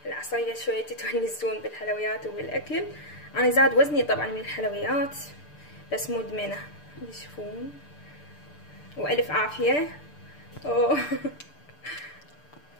العصرية شوية تتونسون بالحلويات وبالاكل. انا زاد وزني طبعا من الحلويات، بس مدمنة. تشوفون، والف عافية.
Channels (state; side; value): late; right; 6.8 ms